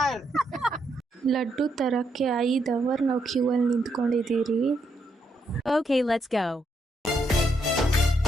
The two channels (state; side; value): normal; both; correlation 0.78